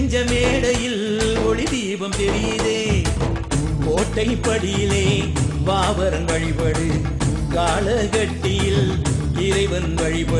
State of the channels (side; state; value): both; identical; correlation 1.00